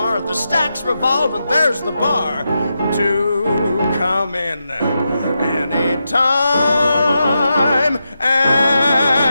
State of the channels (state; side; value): inverted; both; correlation -0.87